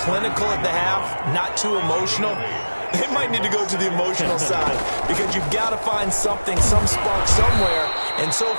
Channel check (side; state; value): both; inverted; correlation -1.00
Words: at the half, not too emotional. They might need to go to the emotional side because you've got to find something, some spark somewhere. And so